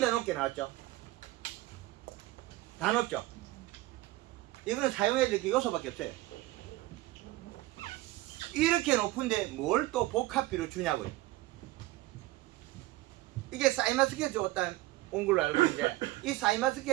높게 나왔죠. 다 높죠. 이거는 사용해야 될 게 요소밖에 없어요. 이렇게 높은데 뭘 또 복합비로 주냐고요. 이게 사이마스켓 줬다 온 걸로 알고 있는데 이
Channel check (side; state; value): left; quieter; 18.2 dB